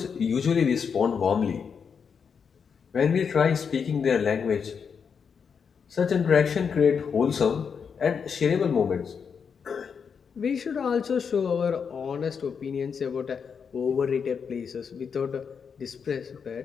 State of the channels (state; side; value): quieter; right; 6.4 dB